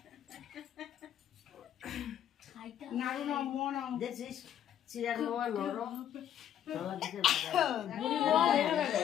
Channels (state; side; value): quieter; right; 10.3 dB